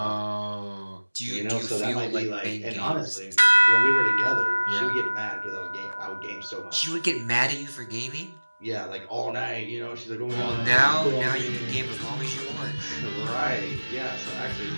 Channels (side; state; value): both; inverted; correlation -1.00